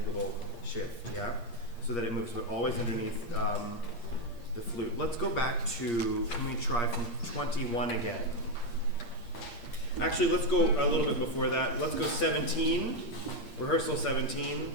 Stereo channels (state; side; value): late; right; 8.6 ms